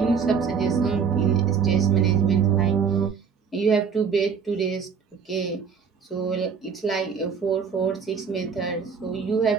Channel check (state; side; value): quieter; left; 6.2 dB